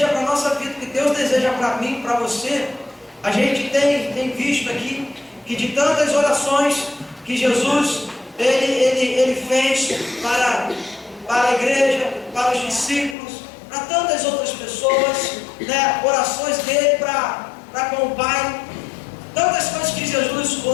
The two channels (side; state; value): right; drops out; at 13.2 s